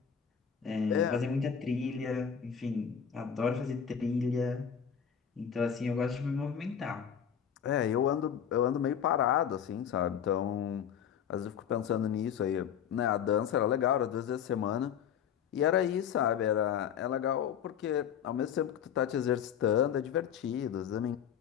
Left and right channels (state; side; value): quieter; right; 8.3 dB